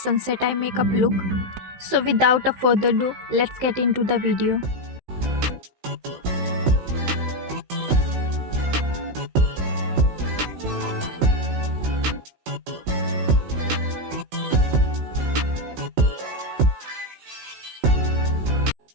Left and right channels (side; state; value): left; late; 16 ms